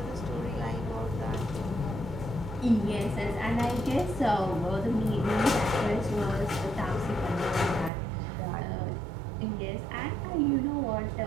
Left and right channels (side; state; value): left; drops out; at 7.9 s